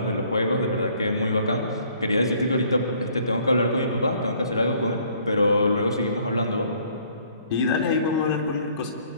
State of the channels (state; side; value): inverted; both; correlation -0.60